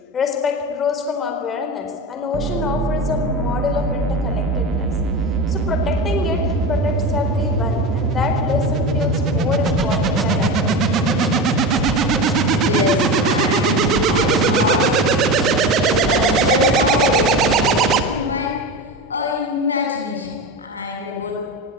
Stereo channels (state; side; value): normal; both; correlation 0.24